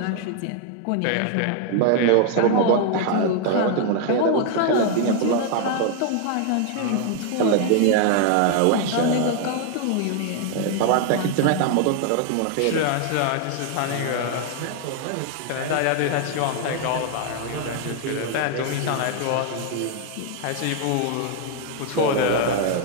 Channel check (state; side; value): different; both; correlation 0.00